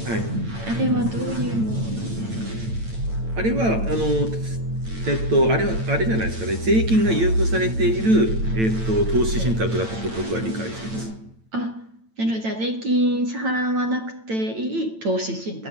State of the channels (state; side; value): late; left; 9.0 ms